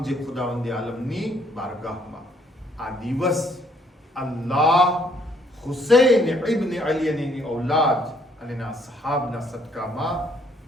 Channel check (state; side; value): normal; both; correlation 0.66